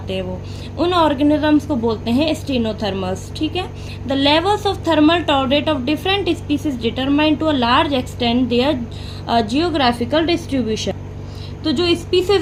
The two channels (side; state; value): both; identical; correlation 1.00